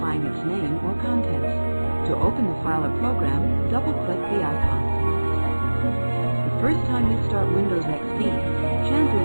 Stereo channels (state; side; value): inverted; both; correlation -1.00